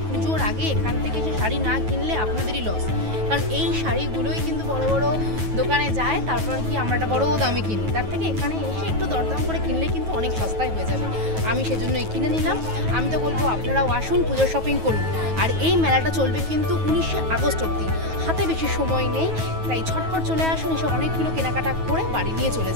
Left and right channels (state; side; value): late; left; 9.3 ms